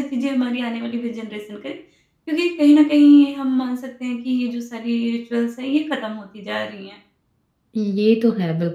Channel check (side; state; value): both; identical; correlation 1.00